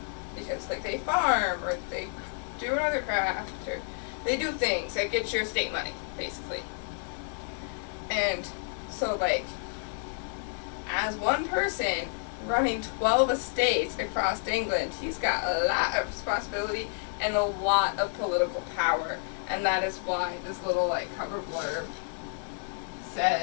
because, like, they farm, or they do another craft, or they do things that get your estate money, basically. And so, like, as one person running 12 estates across England, he's got a lot of responsibility and a lot of political power. And that is why this little, like, cover blurb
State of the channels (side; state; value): right; silent; 58 dB below the other